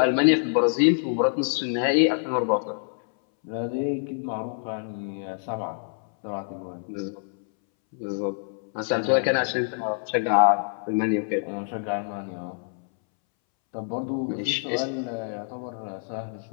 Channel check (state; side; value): silent; right; 61 dB below the other